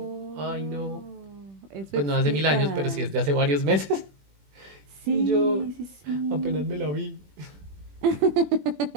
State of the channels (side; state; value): left; late; 21 ms